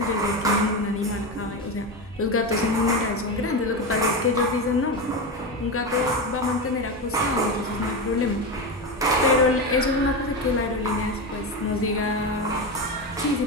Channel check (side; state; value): both; normal; correlation 0.17